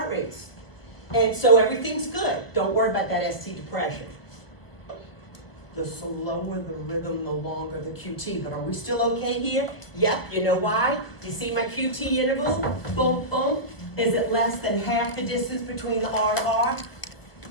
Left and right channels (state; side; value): late; right; 1.2 ms